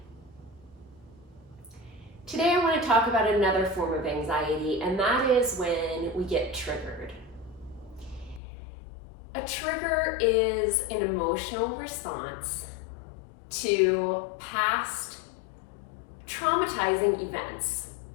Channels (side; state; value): right; drops out; at 8.4 s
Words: Today I want to talk about another form of anxiety, and that is when we get triggered. A trigger is an emotional response to past traumatizing events.